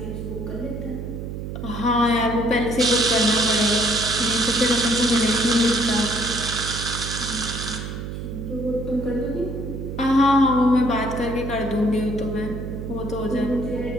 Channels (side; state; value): right; noise; hum, 7 dB below the sound